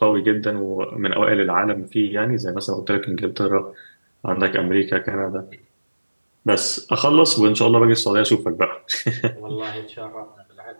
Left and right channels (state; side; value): inverted; both; correlation -1.00